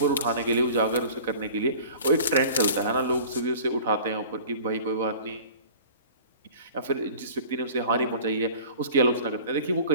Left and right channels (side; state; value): both; inverted; correlation -0.44